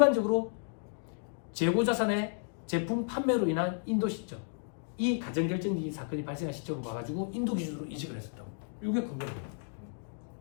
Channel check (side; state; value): right; silent; digital silence